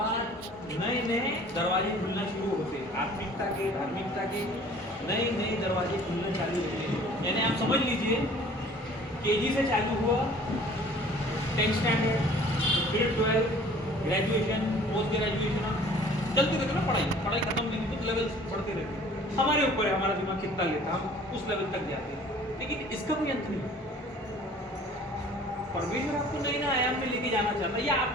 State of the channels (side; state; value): both; normal; correlation 0.50